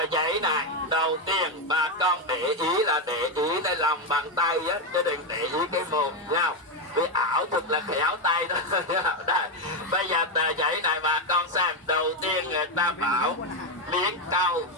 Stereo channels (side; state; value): both; normal; correlation 0.07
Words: giấy này đầu tiên bà con để ý là để ý cái lòng bàn tay á, chứ đừng để ý cái mồm nhau. Vì ảo thuật là khéo tay đó. Đây, bây giờ tờ giấy này bà con xem. Đầu tiên người ta bảo miếng cau